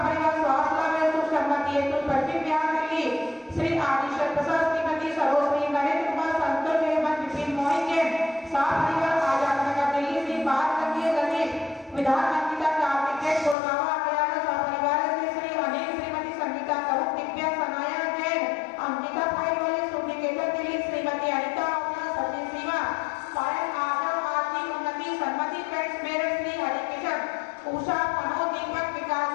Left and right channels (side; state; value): right; drops out; at 13.6 s